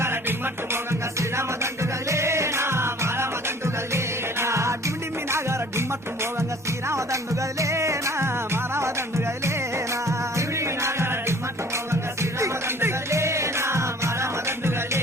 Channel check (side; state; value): both; normal; correlation 0.51